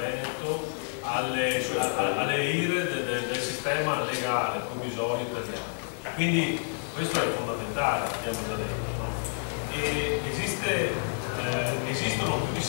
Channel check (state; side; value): silent; right; 59 dB below the other